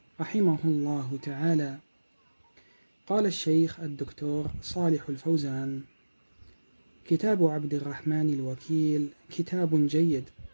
رحمه الله تعالى. قال الشيخ الدكتور صالح الفوزان: كتاب عبد الرحمن الوكيل كتاب جيد،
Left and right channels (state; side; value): inverted; both; correlation -1.00